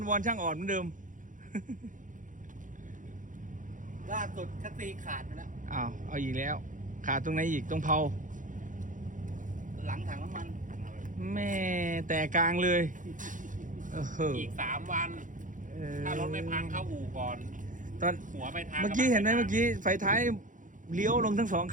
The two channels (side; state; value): left; late; 0.38 ms